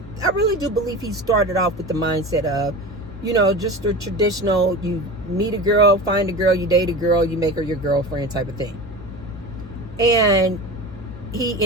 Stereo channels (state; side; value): normal; both; correlation 0.30